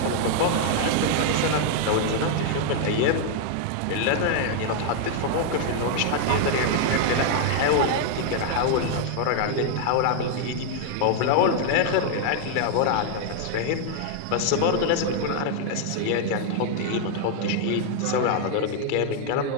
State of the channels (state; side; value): different; both; correlation 0.00